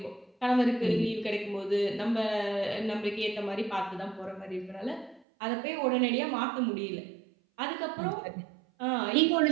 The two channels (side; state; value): left; drops out; at 5.2 s